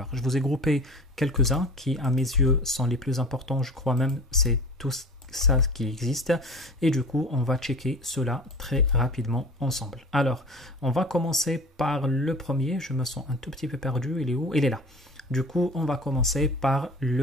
Je vous ai groupé quelques-uns qui, à mes yeux, sont les plus importants. Je crois même c'est tout ça qui existe. Et du coup, on va checker cela très rapidement ensemble. Alors, on va commencer par le premier. Je me sens un tout petit peu perdu. Il est où? Il est là. Du coup, on va commencer par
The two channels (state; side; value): normal; both; correlation 0.40